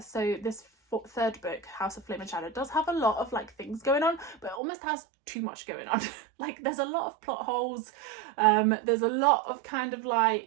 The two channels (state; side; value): drops out; left; at 4.6 s